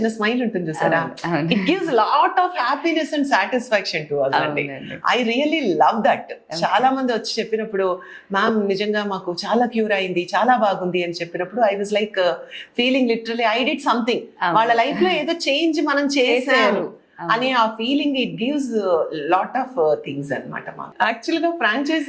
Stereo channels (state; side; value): identical; both; correlation 1.00